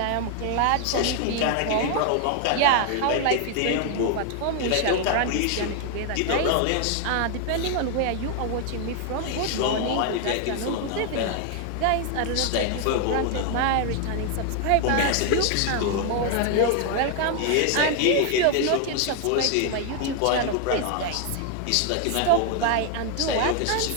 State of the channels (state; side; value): different; both; correlation 0.00